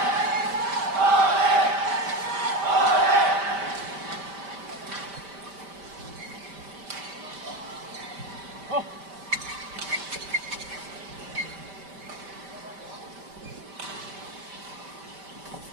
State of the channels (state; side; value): late; left; 5.1 ms